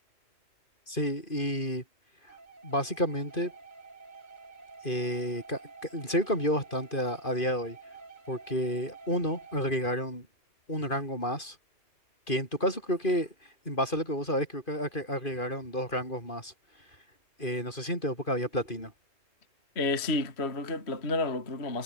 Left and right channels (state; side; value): late; right; 2.5 ms